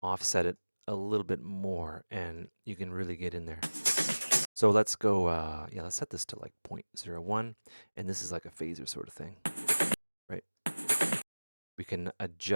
offset it a little bit more, and you can really get in there. So let's go, let's set this to like 0.01, and this is like a phaser sort of thing, right? We can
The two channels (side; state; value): both; inverted; correlation -1.00